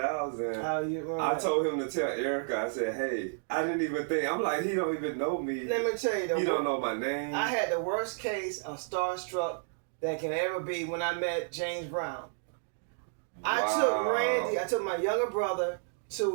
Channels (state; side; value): silent; left; digital silence